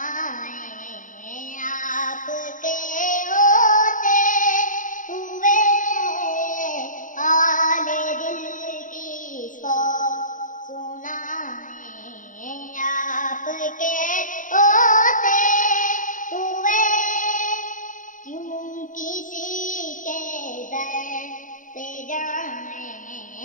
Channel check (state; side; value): late; right; 0.38 ms